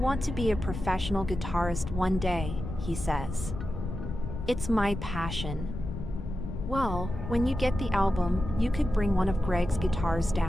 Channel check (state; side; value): noise; left; rumble, 7 dB below the sound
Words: to be a professional guitarist one day, he says. It's my passion. Well, when you get the album, you could bring one of Greg's guitars